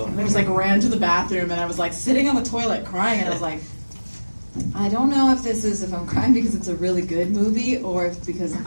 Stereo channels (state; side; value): inverted; both; correlation -1.00